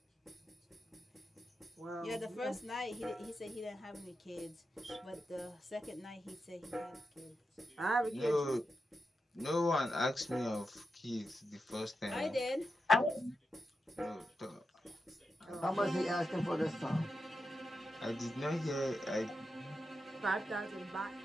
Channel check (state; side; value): normal; both; correlation 0.88